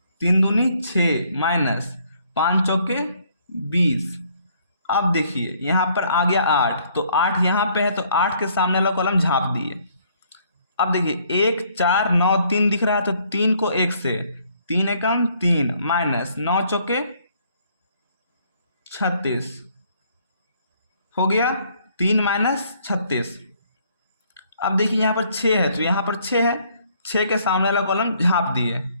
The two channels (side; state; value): both; inverted; correlation -0.65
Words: 3 दूनी 6 माइनस 5 चौके 20। अब देखिए यहाँ पर आ गया 8, तो 8 यहाँ पे है तो 8 के सामने वाला कॉलम झाँप दिए। अब देखिए 1 4 9 3 दिख रहा है तो 3 को 1 से 3 एकम 3 माइनस 9 चौके 36 हो गया 3 माइनस 36। अब देखिए यहाँ पर 6 है तो यहाँ पर 6 है, 6 के सामने वाला कॉलम झाँप दिए,